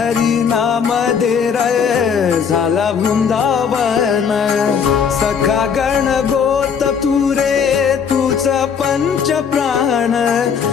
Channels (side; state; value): right; quieter; 6.8 dB